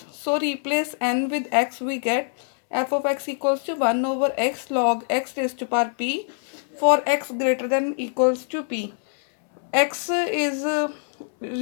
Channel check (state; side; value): silent; right; 63 dB below the other